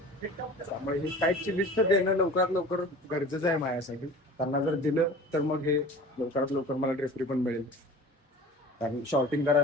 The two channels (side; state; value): both; normal; correlation 0.41